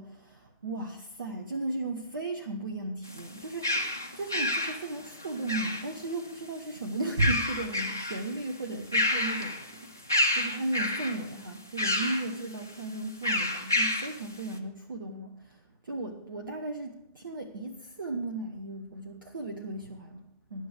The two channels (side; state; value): both; inverted; correlation -0.47